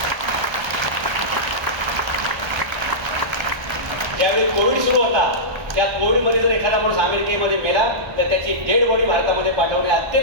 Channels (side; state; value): left; late; 1.3 ms